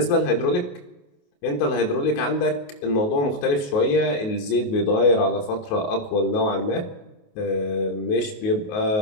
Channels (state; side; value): late; right; 28 ms